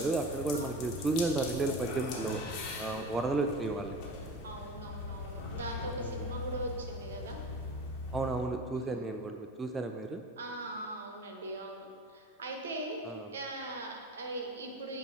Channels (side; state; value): both; normal; correlation 0.33